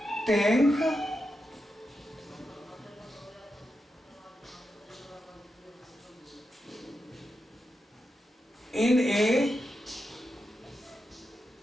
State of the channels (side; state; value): both; normal; correlation 0.87